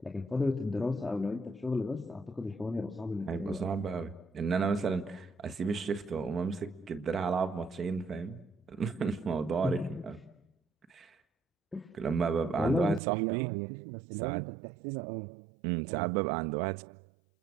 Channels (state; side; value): drops out; left; at 13.0 s